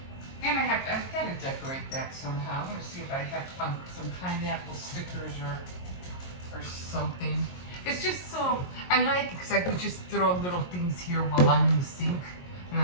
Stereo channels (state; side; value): late; right; 22 ms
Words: And I've got to decorate that somehow. I'm gonna see if I have some pineapple stickers or something. It's just so I like it because I could just throw little things here while I'm in the sink, and